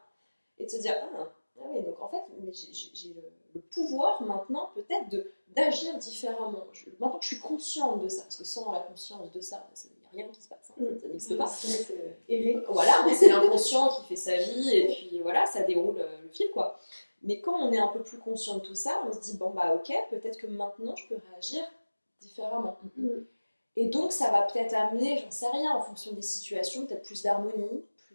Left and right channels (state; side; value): inverted; both; correlation -1.00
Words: et de se dire, ah oui, donc en fait, mais j'ai le pouvoir maintenant peut-être d'agir différemment. Maintenant que je suis consciente de ça, parce que sans la conscience de ça, il n'y a rien qui se passe, ça n'existe pas. Voilà, c'est l'inconscient qui fait sa vie, et puis voilà, ça déroule le fil, quoi. Mais quand on est un peu plus conscient de tout ça, on se dit, bon bah ok, peut-être que maintenant je peux réagir différemment. Et donc ça va peut-être amener, j'en sais rien, en fonction des situations, peut-être plus d'harmonie,